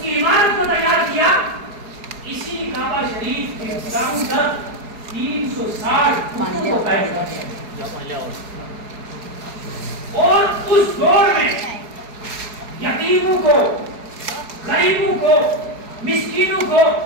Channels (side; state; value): left; late; 4.7 ms